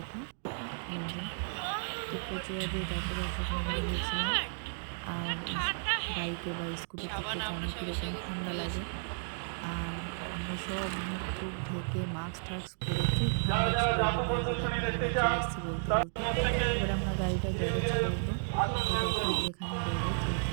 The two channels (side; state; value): left; silent; digital silence